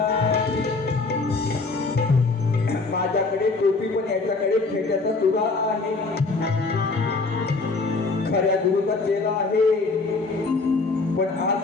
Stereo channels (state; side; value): quieter; right; 3.9 dB